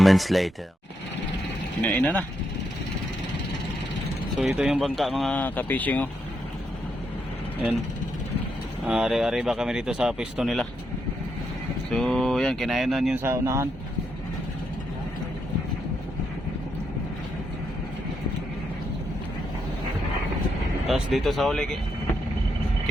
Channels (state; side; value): normal; both; correlation 0.80